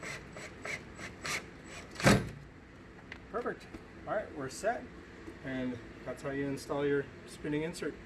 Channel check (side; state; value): both; identical; correlation 1.00